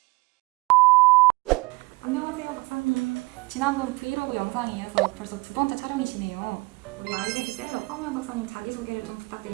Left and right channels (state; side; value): quieter; left; 25.2 dB